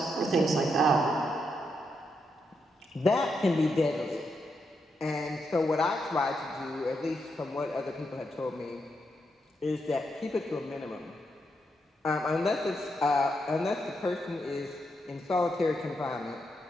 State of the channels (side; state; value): both; normal; correlation 0.82